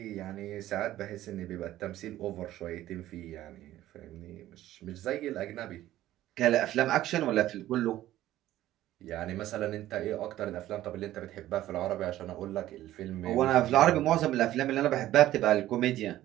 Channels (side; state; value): left; quieter; 14.2 dB